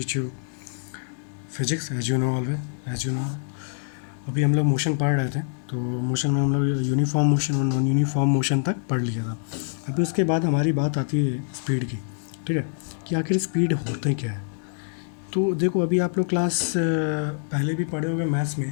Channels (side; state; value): right; silent; digital silence